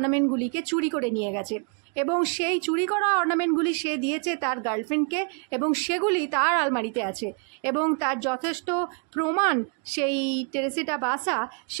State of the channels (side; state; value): left; quieter; 39.0 dB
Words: চুরি করে নিয়ে গেছে এবং সেই চুরি করা অর্নামেন্টগুলি সে দিয়েছে তার গার্লফ্রেন্ডকে এবং সেগুলি তার আলমারিতে আছে এবং তার যথেষ্ট প্রমাণ সেই টেরেসিটা বাসা